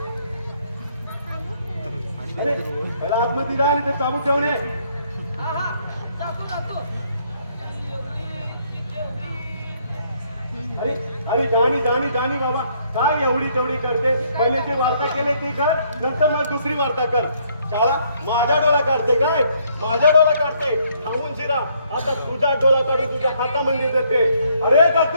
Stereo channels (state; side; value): inverted; both; correlation -0.68